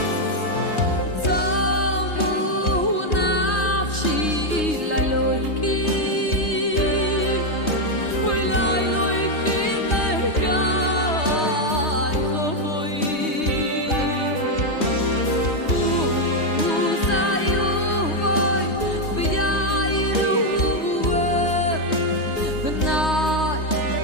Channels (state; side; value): late; right; 3.2 ms